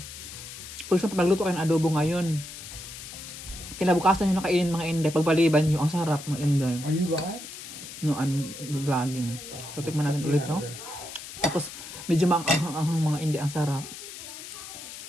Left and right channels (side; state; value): left; noise; hiss, 12 dB below the sound